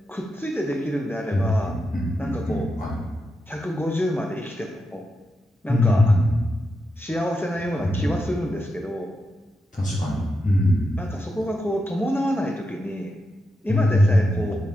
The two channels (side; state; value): both; normal; correlation 0.86